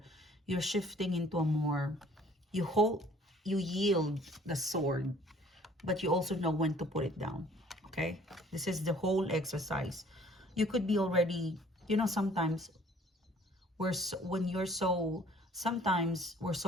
you're shifting into a more, you hold, you yield the sword, but you also know when to put it down. Okay, this is the whole exercise. You could be already, sometimes when you're so, sometimes we're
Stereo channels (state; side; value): normal; both; correlation 0.56